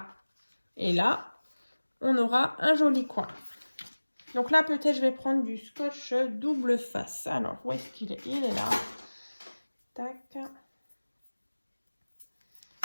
et là, on aura un joli coin. Donc là, peut-être je vais prendre du scotch double face. Alors, où est-ce qu'il est? Il est là. Tac.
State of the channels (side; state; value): both; inverted; correlation -1.00